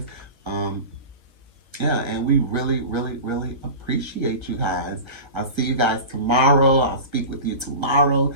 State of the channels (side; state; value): left; late; 1.3 ms